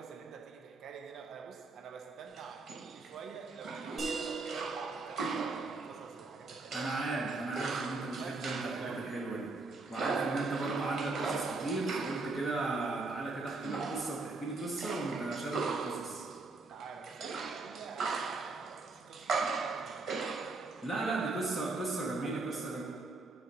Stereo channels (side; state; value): left; quieter; 3.5 dB